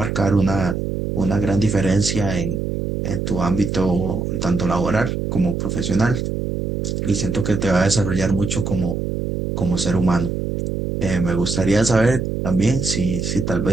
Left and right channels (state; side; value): noise; right; hum, 2 dB below the sound